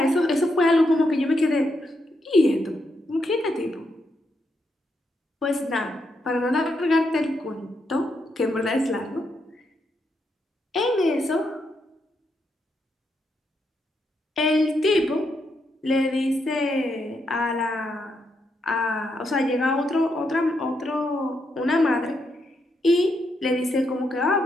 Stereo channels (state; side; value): normal; both; correlation 0.80